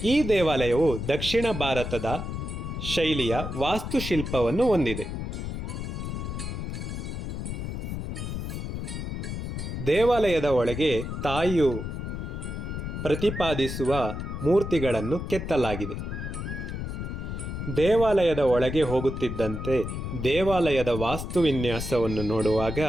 ಈ ದೇವಾಲಯವು ದಕ್ಷಿಣ ಭಾರತದ ಶೈಲಿಯ ವಾಸ್ತುಶಿಲ್ಪವನ್ನು ಹೊಂದಿದೆ. ದೇವಾಲಯದ ಒಳಗೆ ತಾಯಿಯು ಪ್ರತಿಪಾದಿಸುವ ಮೂರ್ತಿಗಳನ್ನು ಕೆತ್ತಲಾಗಿದೆ. ದೇವಾಲಯದ ಒಳಗೆ ಹೋಗುತ್ತಿದ್ದಂತೆ ದೇವಾಲಯದ ವಾಸ್ತುವಿನ್ಯಾಸವನ್ನು ನೋಡುವಾಗ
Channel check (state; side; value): noise; left; rumble, 5 dB below the sound